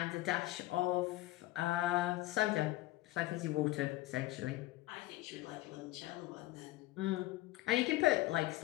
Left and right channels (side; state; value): right; quieter; 17.3 dB